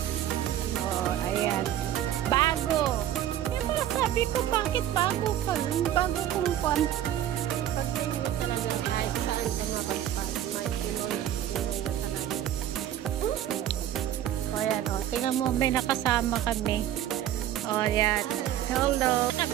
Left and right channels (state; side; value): quieter; left; 11.7 dB